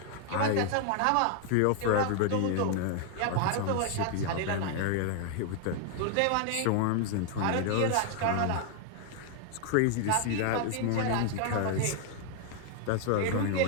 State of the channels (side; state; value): both; different; correlation 0.00